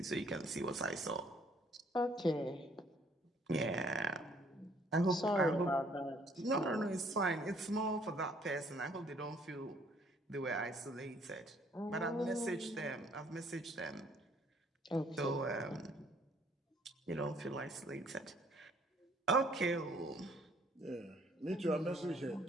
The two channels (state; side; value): normal; both; correlation 0.62